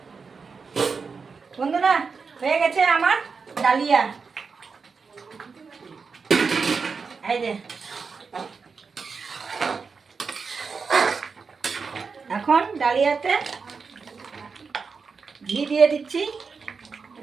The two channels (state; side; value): quieter; left; 5.1 dB